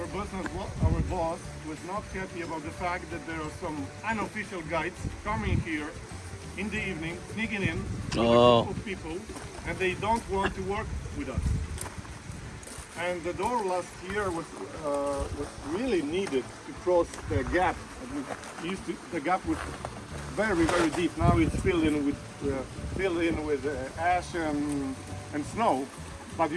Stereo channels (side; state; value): both; identical; correlation 1.00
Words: boss was not happy about the fact that there are some unofficial guides coming here in the evening, sneaking in with a group of people, and they don't want to work with us. And the door last year was really needed to cross the gap. The gap was very deep. Now it's filled in with ash and snow. But